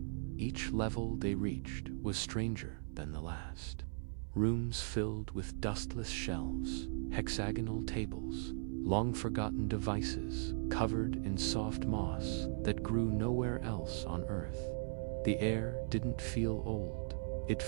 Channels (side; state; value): left; silent; 52 dB below the other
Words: Each level they reached was stranger than the last. Rooms filled with dustless shelves, hexagonal tables, long-forgotten devices covered in soft moss that grew nowhere else on Earth. The air didn't feel old, it